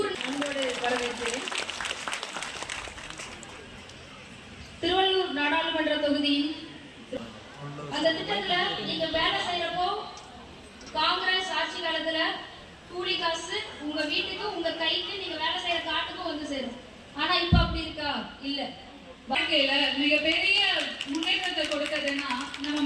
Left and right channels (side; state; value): both; identical; correlation 1.00